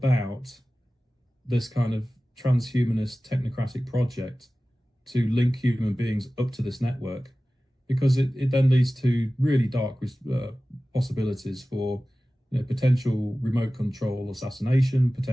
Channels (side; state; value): both; normal; correlation 0.96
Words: this kind of transhumanist technocratic project to link human beings up to this network, because it then leads to really dark possibilities for, you know, potential remote control assassination,